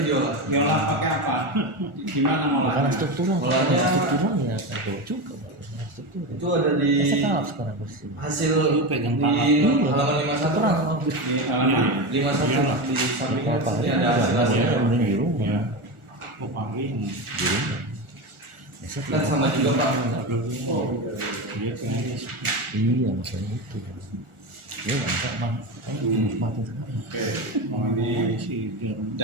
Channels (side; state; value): left; late; 1.4 ms